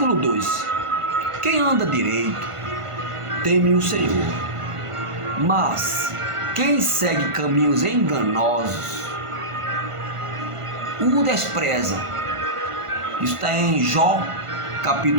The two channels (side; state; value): left; late; 1.5 ms